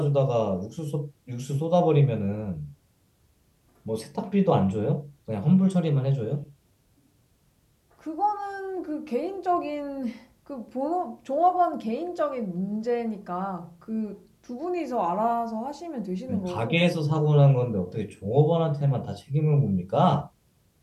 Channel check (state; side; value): identical; both; correlation 1.00